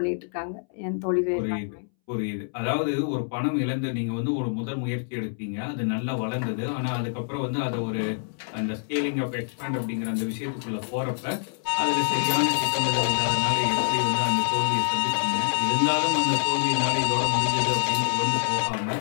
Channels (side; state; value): right; silent; 61 dB below the other